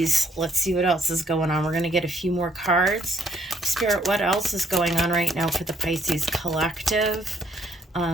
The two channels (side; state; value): both; normal; correlation 0.68